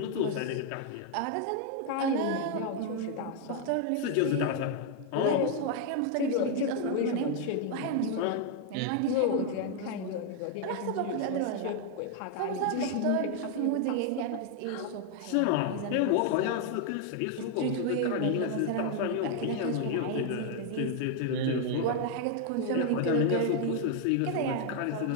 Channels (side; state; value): both; different; correlation 0.00